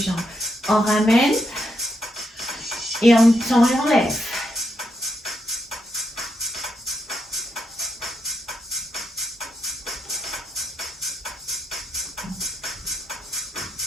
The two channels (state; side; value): normal; both; correlation 0.81